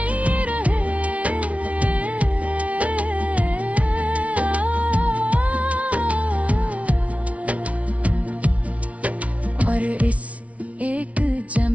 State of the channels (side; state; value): left; late; 0.066 ms